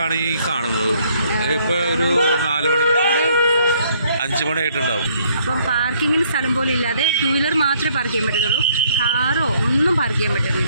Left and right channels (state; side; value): inverted; both; correlation -0.65